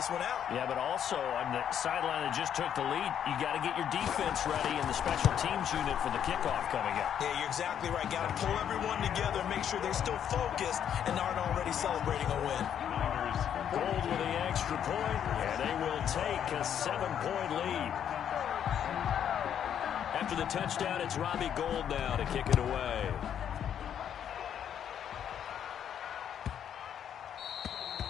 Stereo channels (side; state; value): right; quieter; 9.2 dB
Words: one out. Yeah, but also on the sideline that just took the lead, you got to get your defense ready and the special teams unit for the kickoff coming up. Yeah, you're exactly right. Got to pull everyone together, make sure they're still focused and aren't already celebrating a win. Gold with the extra point, and they will take a 7-point lead. After the touchdown, it's Robbie Gould now to kick it away.